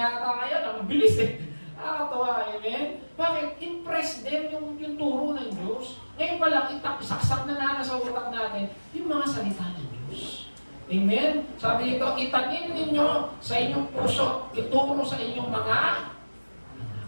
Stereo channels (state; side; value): inverted; both; correlation -1.00